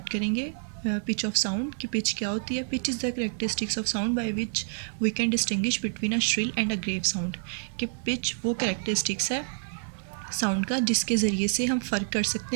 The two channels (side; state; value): left; silent; digital silence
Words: करेंगे पिच ऑफ साउंड कि पिच क्या होती है। Pitch is the characteristics of sound by which we can distinguish between a shrill and a grave sound. कि पिच वो करेक्टरिस्टिक्स है साउंड का जिसके ज़रिए से हम फ़र्क कर सकते